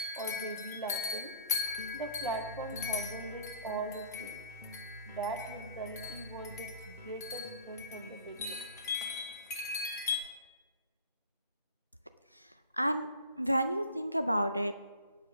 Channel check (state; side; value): inverted; both; correlation -0.48